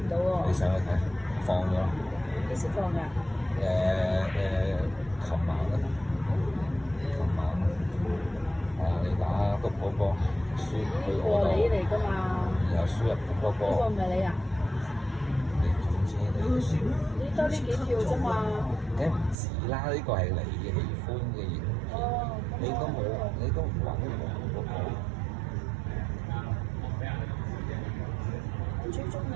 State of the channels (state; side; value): drops out; left; at 19.4 s